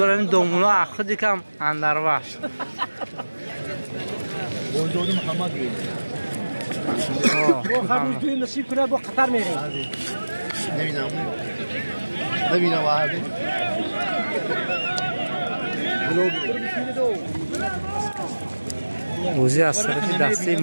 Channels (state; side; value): inverted; both; correlation -1.00